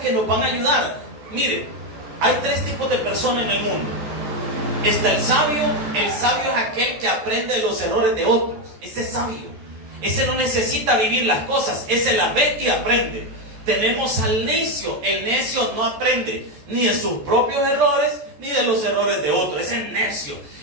nos van a ayudar. Mire, hay tres tipos de personas en el mundo. Está el sabio es aquel que aprende de los errores de otros. Ese es sabio. Ese no necesita vivir las cosas, ese las ve y aprende. Tenemos al necio. El necio no aprende ni de sus propios errores ni de los errores de otros. Ese es necio.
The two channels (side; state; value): left; late; 13 ms